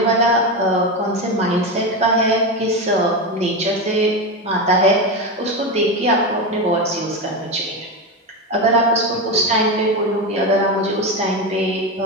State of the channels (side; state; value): both; normal; correlation 0.16